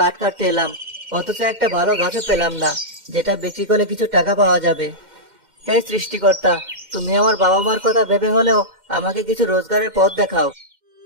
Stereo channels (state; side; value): late; left; 2.1 ms